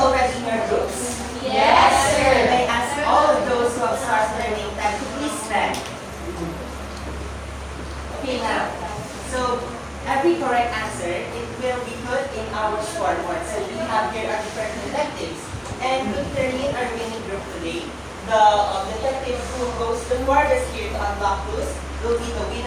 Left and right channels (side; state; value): both; identical; correlation 1.00